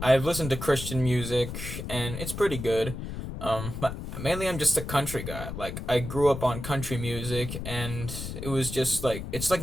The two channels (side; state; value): left; noise; rumble, 7 dB below the sound